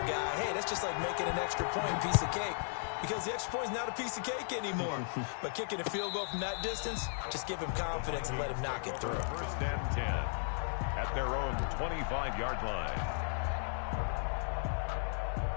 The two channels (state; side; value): silent; right; digital silence